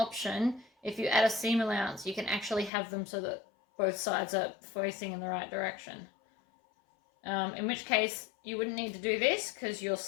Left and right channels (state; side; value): drops out; right; at 2.7 s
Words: If you add a seam allowance, you can actually have them so that both sides are facing in the right direction. In which case you wouldn't need to do this because your